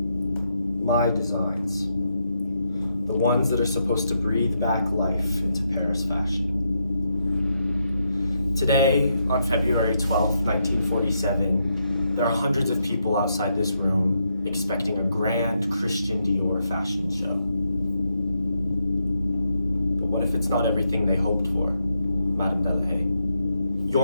My designs. The ones that are supposed to breathe back life into Paris fashion. Today, on February 12th, 1947, there are hundreds of people outside this room expecting a grand Christian Dior fashion show. But what if it's not everything they hoped for, Madame Delahaye?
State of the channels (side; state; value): both; inverted; correlation -0.80